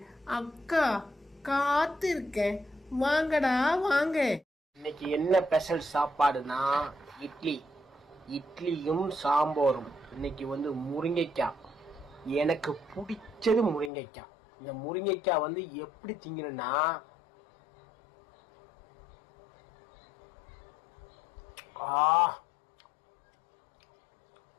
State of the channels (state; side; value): drops out; right; at 13.9 s